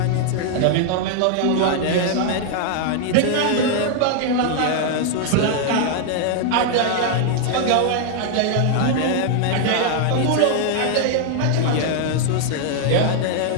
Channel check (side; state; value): both; different; correlation 0.00